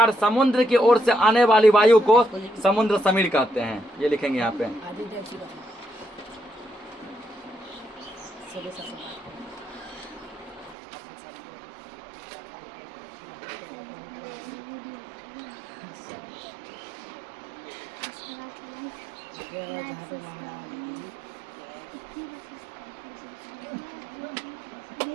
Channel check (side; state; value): left; drops out; at 10.8 s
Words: समुद्र की ओर से आने वाली वायु को समुद्र समीर कहते हैं। ये लिखेंगे यहाँ पे।